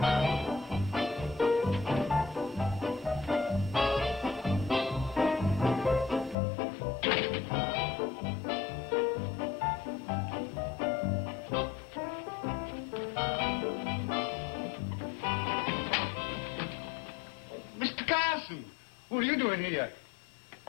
What are you doing here?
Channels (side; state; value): right; drops out; at 6.4 s